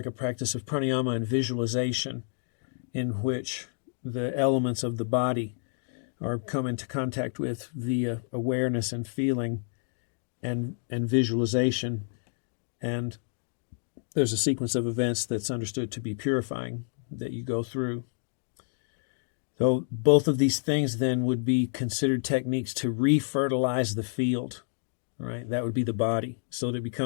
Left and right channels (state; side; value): silent; right; digital silence